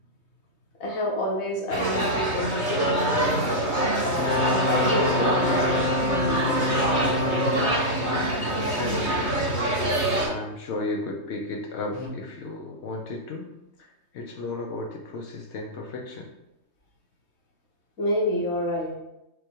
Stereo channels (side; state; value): right; late; 3.2 ms